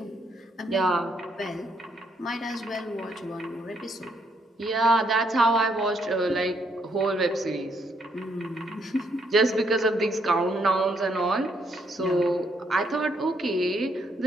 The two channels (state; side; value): normal; both; correlation 0.73